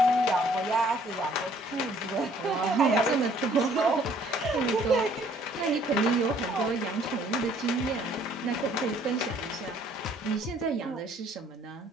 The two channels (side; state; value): both; normal; correlation 0.60